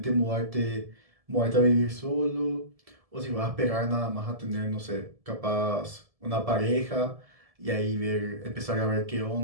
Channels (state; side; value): late; left; 1.7 ms